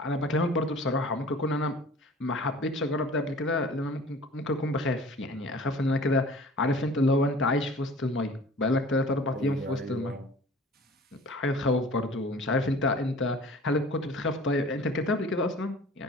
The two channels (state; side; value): normal; both; correlation 0.45